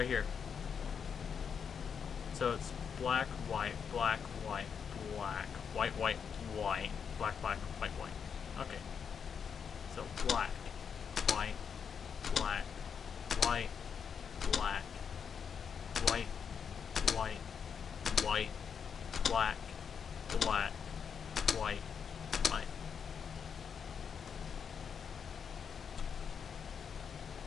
here. So it's black, white, black, white, black, white, white, white, black, black, white, white. Okay. So black, white, black, white, black, white, white, white, black, black, white, white.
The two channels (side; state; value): right; quieter; 6.9 dB